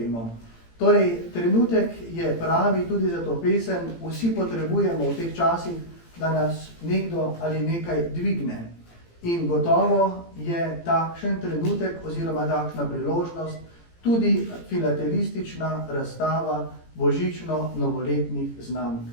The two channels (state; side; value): late; right; 18 ms